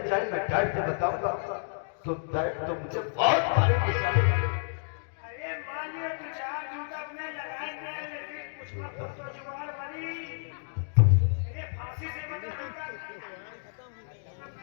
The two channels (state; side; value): silent; right; digital silence